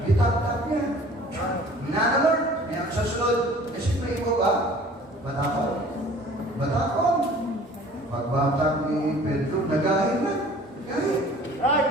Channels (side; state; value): both; normal; correlation 0.49